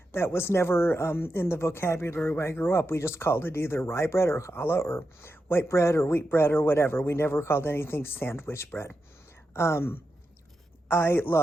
That was never in the vocabulary where I grew up. We just called it either rye bread or challah or white bread or wheat bread or whatever. We never called anything sandwich bread. I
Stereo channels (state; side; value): normal; both; correlation 0.88